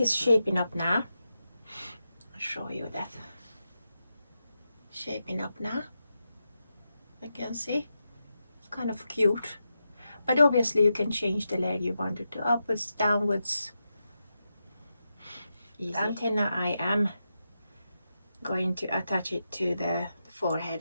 shaping up now. I'll show you that. Shaping up now. You can see it's kind of cute, but obviously you can change the leg you want it to, upwards, downwards. Easy. The antenna, I am going to attach it to the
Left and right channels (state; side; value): inverted; both; correlation -0.88